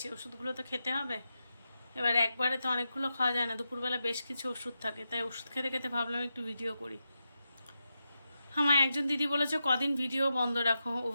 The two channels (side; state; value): both; inverted; correlation -0.88